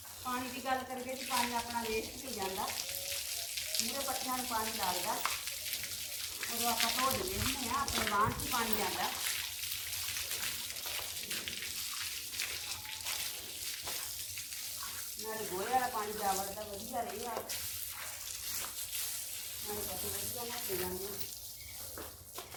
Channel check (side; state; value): both; identical; correlation 1.00